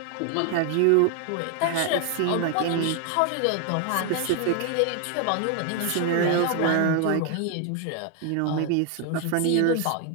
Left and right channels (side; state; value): both; different; correlation 0.00